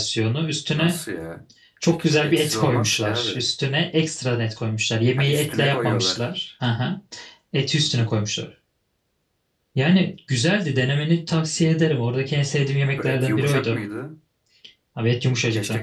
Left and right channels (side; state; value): both; identical; correlation 1.00